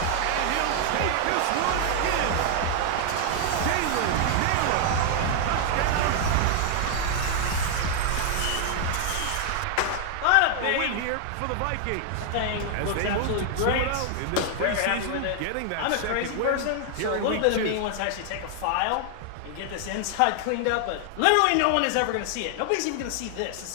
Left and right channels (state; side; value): different; both; correlation 0.00